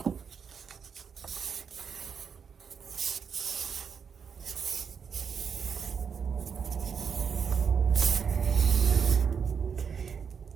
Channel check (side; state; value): left; quieter; 6.6 dB